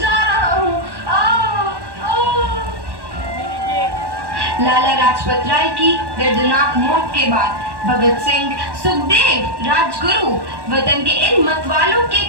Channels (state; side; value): late; left; 1.1 ms